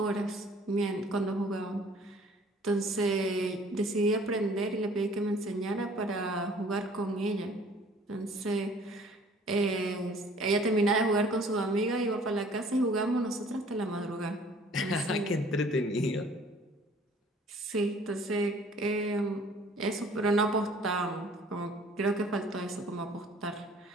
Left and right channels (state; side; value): normal; both; correlation 0.54